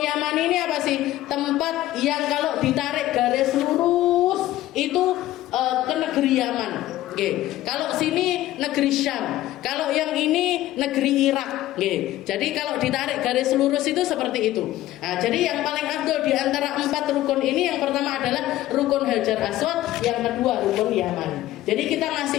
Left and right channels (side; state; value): right; quieter; 15.0 dB